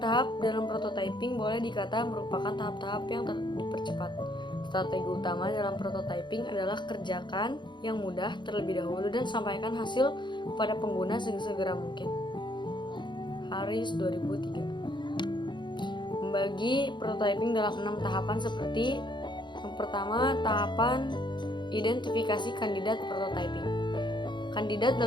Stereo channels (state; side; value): late; right; 0.22 ms